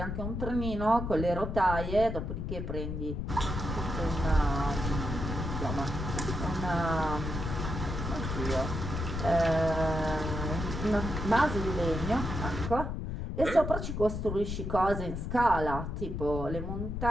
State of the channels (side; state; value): left; noise; rumble, 4 dB below the sound